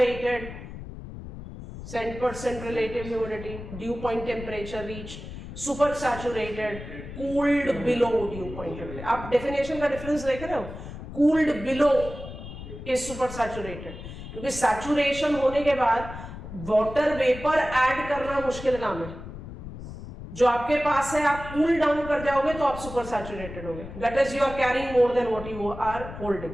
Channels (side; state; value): left; noise; rumble, 11 dB below the sound